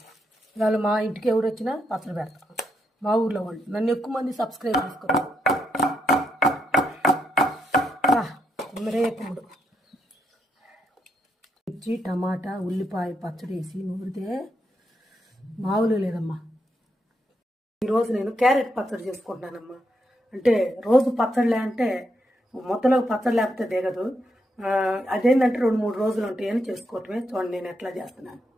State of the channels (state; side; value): normal; both; correlation 0.80